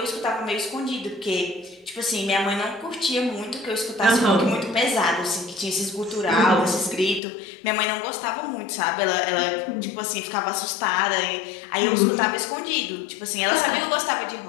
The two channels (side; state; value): right; drops out; at 7.2 s